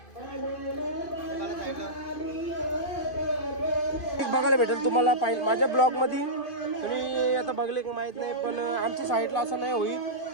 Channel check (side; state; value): right; late; 2.5 ms